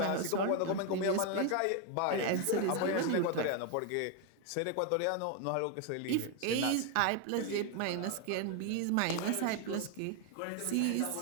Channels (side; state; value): both; different; correlation 0.01